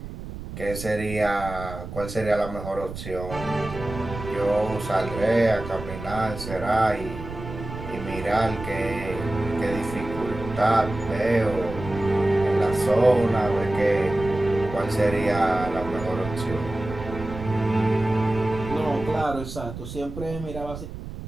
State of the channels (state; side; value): noise; right; rumble, 10 dB below the sound